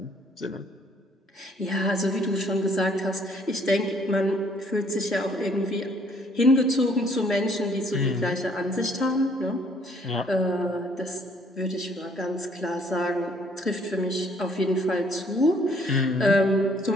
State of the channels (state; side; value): normal; both; correlation 0.62